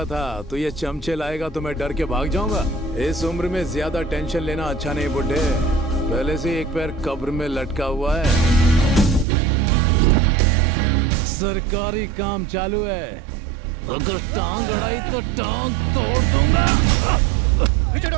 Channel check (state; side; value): drops out; left; at 9.2 s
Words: था तू ये चमचे लाएगा तो मैं डर के भाग जाऊंगा? इस उम्र में ज्यादा टेंशन लेना अच्छा नहीं बुड्ढे। पहले से एक पैर कब्र में लटका हुआ है। सरकारी काम चालू है, अगर टांग अड़ाई तो टांग तोड़ दूंगा। पीछे हटो,